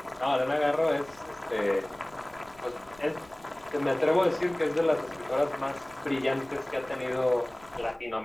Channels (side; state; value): left; noise; rumble, 26 dB below the sound